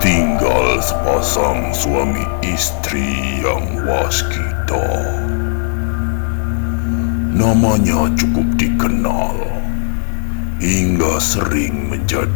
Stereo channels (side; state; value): right; silent; digital silence